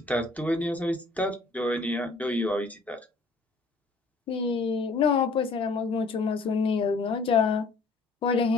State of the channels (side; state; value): right; quieter; 3.7 dB